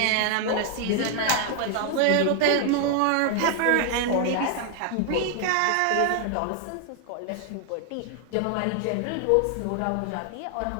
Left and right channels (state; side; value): different; both; correlation 0.00